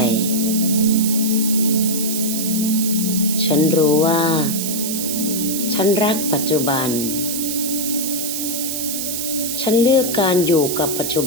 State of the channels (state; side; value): noise; right; hiss, 3 dB below the sound